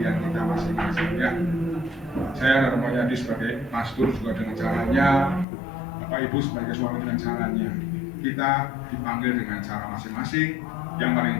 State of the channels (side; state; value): right; drops out; at 5.5 s